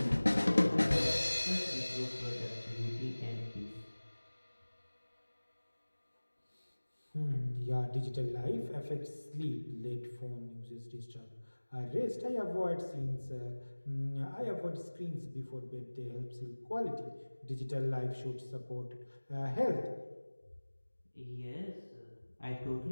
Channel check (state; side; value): inverted; both; correlation -1.00